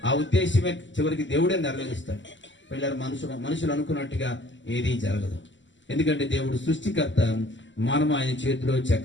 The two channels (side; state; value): right; late; 0.54 ms